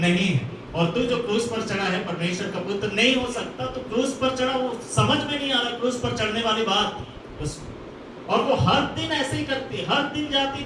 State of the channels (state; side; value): identical; both; correlation 1.00